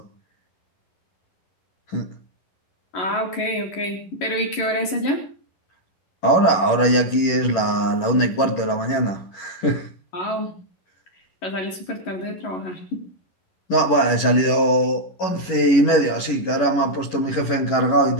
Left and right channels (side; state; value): right; late; 11 ms